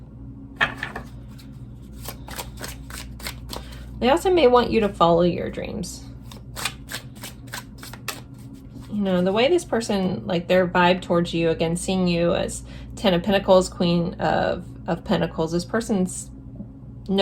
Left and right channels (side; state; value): both; identical; correlation 1.00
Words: They also may want you to follow your dreams. You know, the way this person, like their vibe towards you, again, seeing you as 10 of Pentacles, Queen of Pentacles, this person